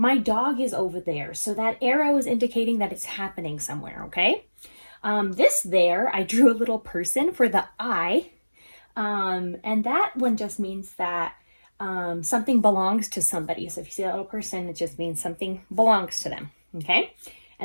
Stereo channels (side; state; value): both; inverted; correlation -1.00